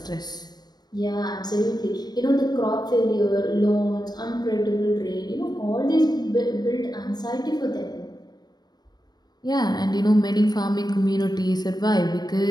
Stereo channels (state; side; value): late; right; 0.19 ms